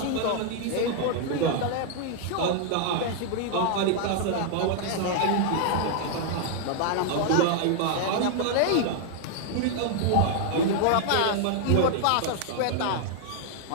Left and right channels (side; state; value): both; different; correlation 0.00